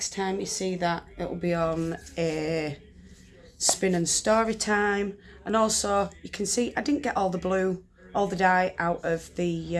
time you see that, it will be on a spin and story time. And also, you can see I didn't get all the blue, all the dye out of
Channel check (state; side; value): identical; both; correlation 1.00